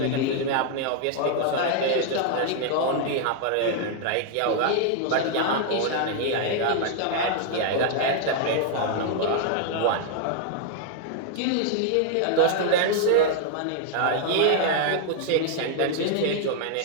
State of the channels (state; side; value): different; both; correlation 0.00